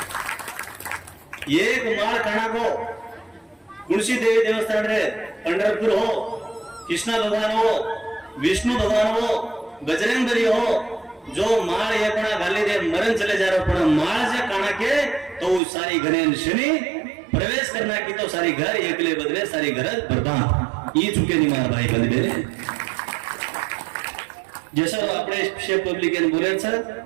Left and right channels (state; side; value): drops out; left; at 15.6 s